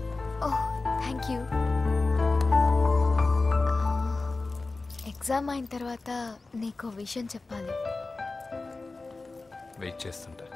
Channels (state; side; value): quieter; right; 3.5 dB